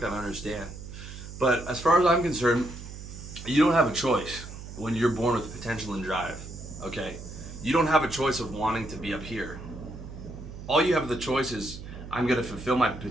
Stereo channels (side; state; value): right; noise; hum, 12 dB below the sound